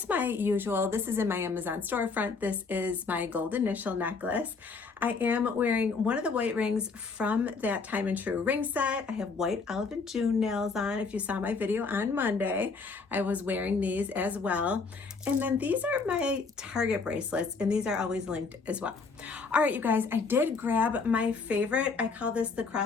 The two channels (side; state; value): right; quieter; 4.6 dB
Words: my usual, this is in my Amazon storefront. This is my gold initial necklace. I am wearing one of the white rings from that Time and True ring set. I have white Olive and June nails on. If you saw my video on Monday, I was wearing these as well. And then these are my Target bracelets, and these are always linked as well. All right, you guys, I did grab my favorite. I call this the